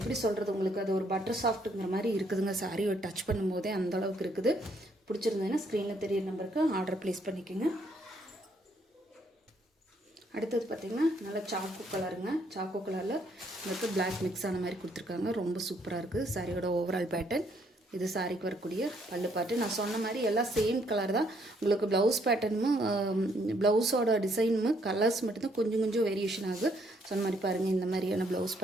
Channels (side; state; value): both; normal; correlation 0.69